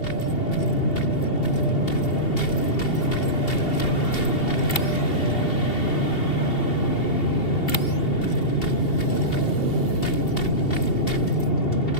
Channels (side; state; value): right; late; 2.7 ms